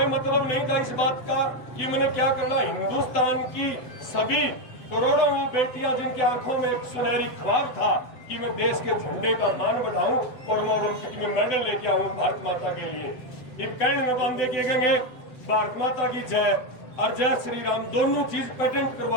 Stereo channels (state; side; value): late; right; 7.9 ms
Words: मतलब नहीं था इस बात का कि मैंने क्या करना। हिंदुस्तान की सभी करोड़ों बेटियां जिनकी आंखों में एक सुनहरी ख्वाब था कि मैं देश के झंडे का मान बढ़ाऊं और मैं ओलंपिक में मेडल लेके आऊं भारत माता के लिए। एक कैंड में बांधे के गएंगे भारत माता की जय और जय श्री राम, दोनों चीज पेटेंट